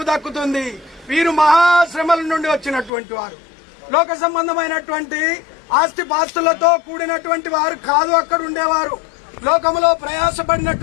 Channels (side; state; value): right; drops out; at 2.9 s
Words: దక్కుతుంది. వీరు మహాశ్రమల నుండి వచ్చినటువంటి వారు, లోక సంబంధమైనటువంటి ఆస్తి పాస్తులతో కూడినటువంటి వారు కాదు. అక్కడ ఉండేవారు లోకంలో